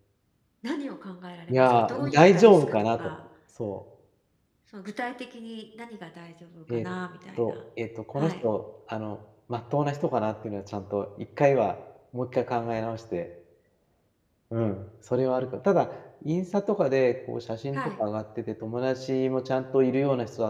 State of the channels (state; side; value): identical; both; correlation 1.00